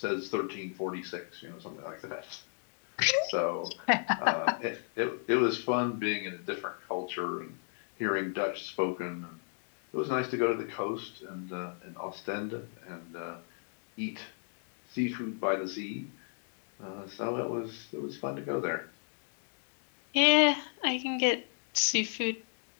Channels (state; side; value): silent; right; 55 dB below the other